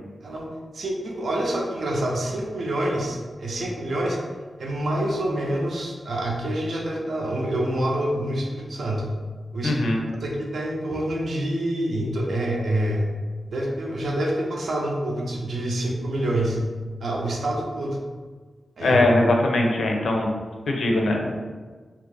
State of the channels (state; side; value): normal; both; correlation 0.87